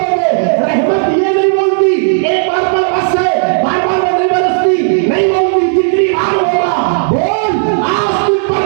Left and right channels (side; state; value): left; silent; digital silence